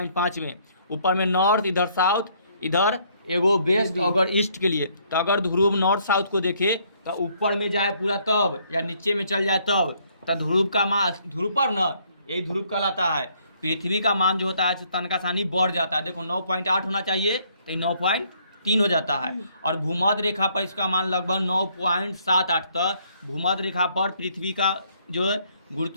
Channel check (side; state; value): both; inverted; correlation -0.66